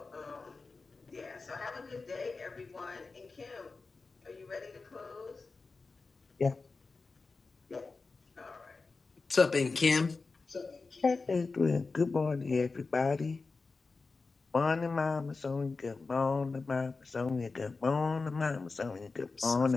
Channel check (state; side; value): quieter; right; 4.1 dB